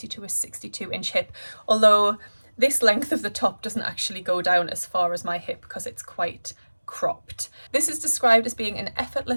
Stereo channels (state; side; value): inverted; both; correlation -1.00